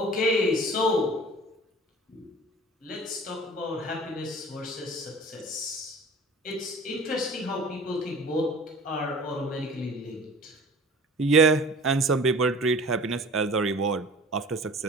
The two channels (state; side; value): normal; both; correlation 0.43